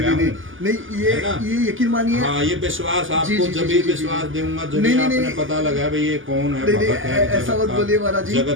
नहीं, हूँ। नहीं, है ना? ये यकीन मानिए। हाँ, ये विश्वास जी, आपको जी, जब जी, भी जी, विश्वास जी। दूंगा जब नहीं, भी नहीं, आपने नहीं। पता लगा भाई ये कौन है, नहीं, नहीं, भगत है, ऐसा जगत मत का- बोलिए महाराज जी।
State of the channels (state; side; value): late; left; 0.58 ms